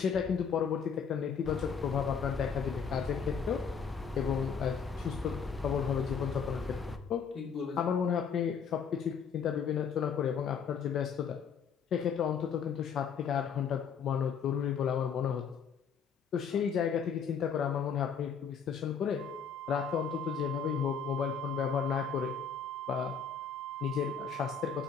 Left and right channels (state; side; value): quieter; right; 6.3 dB